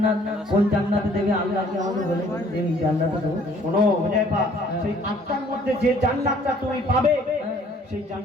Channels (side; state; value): both; normal; correlation 0.58